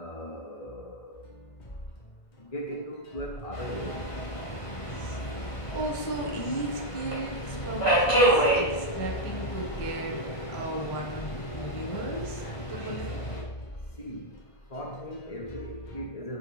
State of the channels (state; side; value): late; right; 1.5 ms